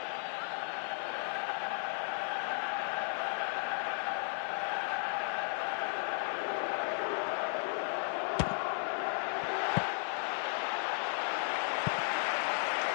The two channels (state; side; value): silent; right; 54 dB below the other